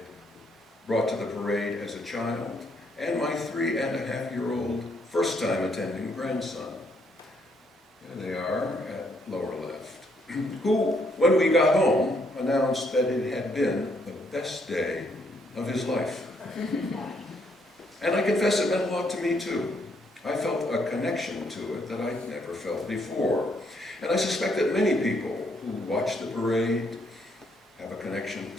brought to the parade as a child, and my 3.5-year-old first-time attending grandson. There they are at lower left, who, when we got home, announced that it had been the best day of his life. And I confess it meant a lot to me too. I felt a connection to it that I'd never felt before. And I suspect that many people who watch the parade have a connection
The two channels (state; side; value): normal; both; correlation 0.72